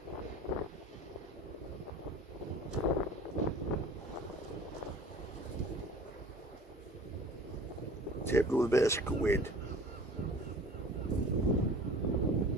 Tipped with a bit of squid.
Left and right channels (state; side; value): normal; both; correlation 0.44